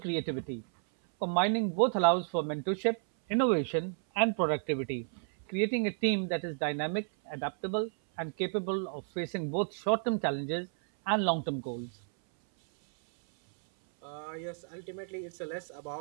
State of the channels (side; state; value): left; silent; 56 dB below the other